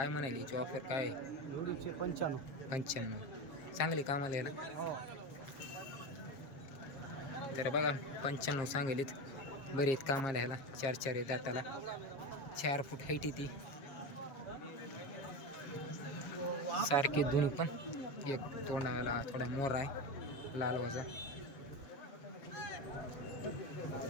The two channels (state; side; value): late; right; 7.5 ms